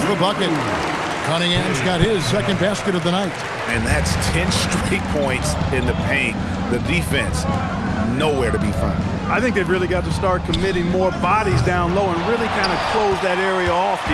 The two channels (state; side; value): identical; both; correlation 1.00